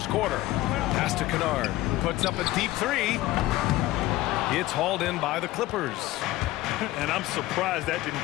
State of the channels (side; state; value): right; quieter; 16.9 dB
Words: quarter. Pass to Kennard. Puts up a deep 3. It's hauled in by the Clippers. And I'm surprised that